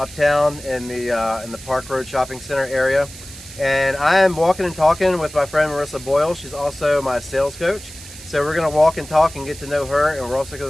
in the Park Road Shopping Center area. And I am walking and talking with my friend Marissa Boyle. She's also my sales coach. So we're gonna walk and talk and get to know her, and we're also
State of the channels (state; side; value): noise; right; hiss, 16 dB below the sound